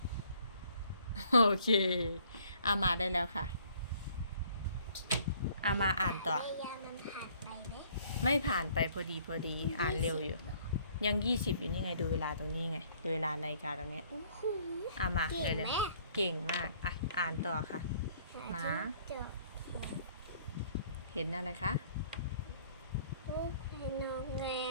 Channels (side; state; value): both; inverted; correlation -0.59